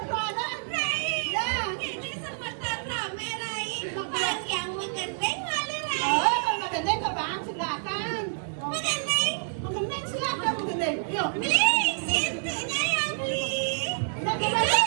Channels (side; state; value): left; silent; digital silence